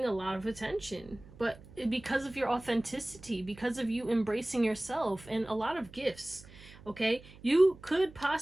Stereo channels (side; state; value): right; noise; hum, 20 dB below the sound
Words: a lot of attention, but because of your authenticity, because of you embracing yourself, and a lot of gifts. Okay, you could